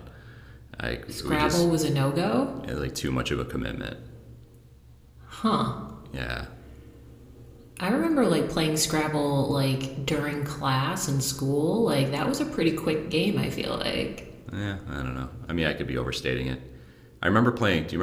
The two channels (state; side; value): identical; both; correlation 1.00